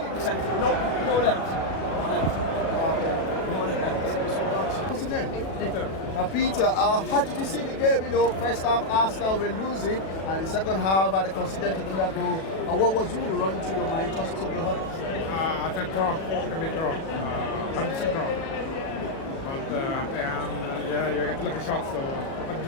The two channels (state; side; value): late; right; 37 ms